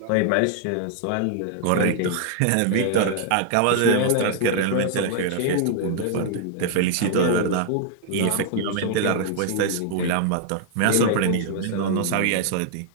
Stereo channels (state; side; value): different; both; correlation -0.01